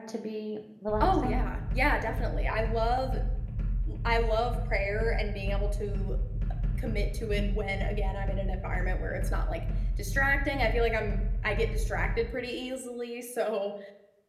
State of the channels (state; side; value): identical; both; correlation 1.00